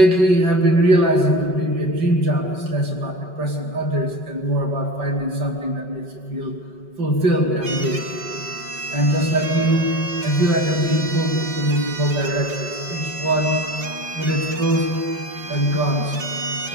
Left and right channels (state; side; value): late; left; 5.3 ms